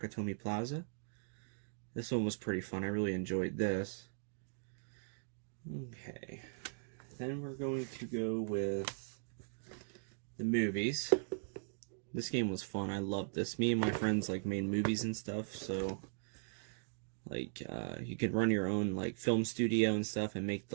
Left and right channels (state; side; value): silent; left; digital silence